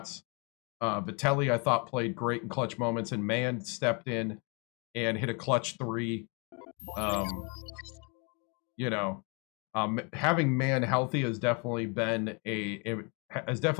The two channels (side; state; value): right; quieter; 33.4 dB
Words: Vitelli, I thought, played great in clutch moments, and Mann stepped in and hit a clutch 3. You know, having Mann healthy has definitely been